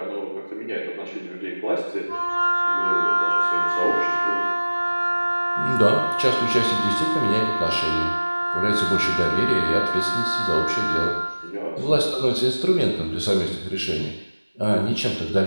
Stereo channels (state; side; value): inverted; both; correlation -1.00